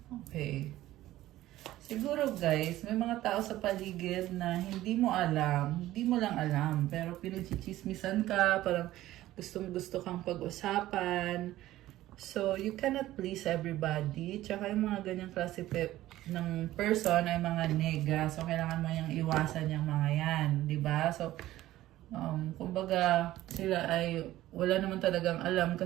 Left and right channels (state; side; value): quieter; left; 15.2 dB